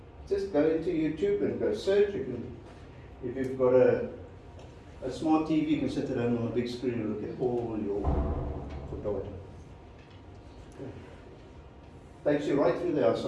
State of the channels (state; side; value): identical; both; correlation 1.00